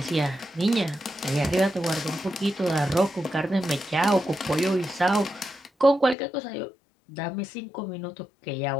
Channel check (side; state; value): right; drops out; at 6.2 s